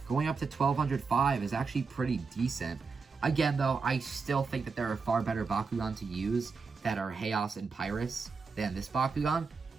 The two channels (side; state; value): left; quieter; 4.9 dB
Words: Going up to 1205 is actually pretty decent. Again, though, I still think that there are far better Bakugan to use that are Chaos and Pyrus than this Bakugan.